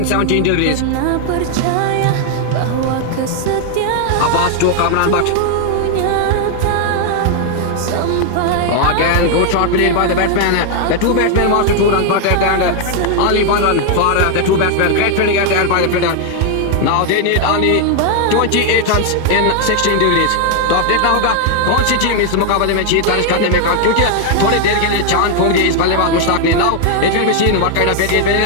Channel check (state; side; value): different; both; correlation 0.00